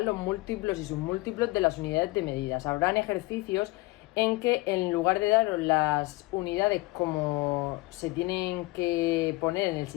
los múltiplos y submúltiplos de las unidades de medidas. Habrán ejercicios en que, en lugar de daros las unidades como se tienen que poner en el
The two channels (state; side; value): quieter; right; 22.0 dB